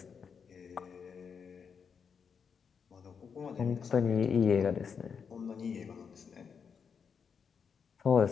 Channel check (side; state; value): right; quieter; 6.4 dB